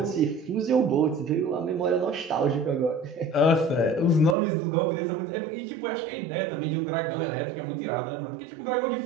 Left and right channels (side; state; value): left; drops out; at 4.4 s